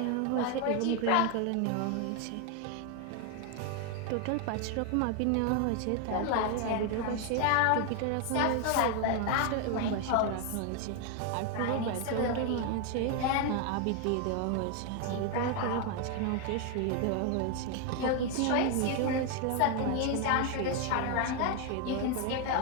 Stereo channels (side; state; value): both; different; correlation 0.01